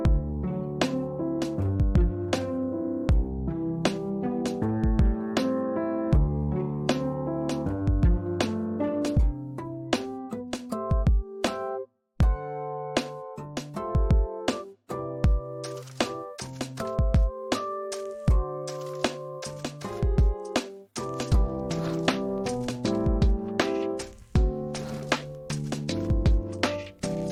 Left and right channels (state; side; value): identical; both; correlation 1.00